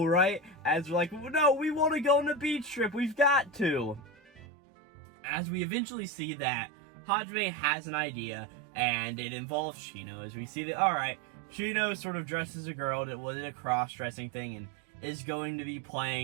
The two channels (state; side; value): drops out; left; at 4.4 s